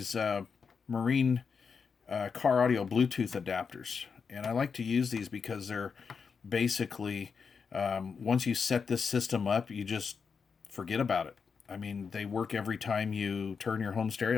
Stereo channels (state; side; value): quieter; right; 5.7 dB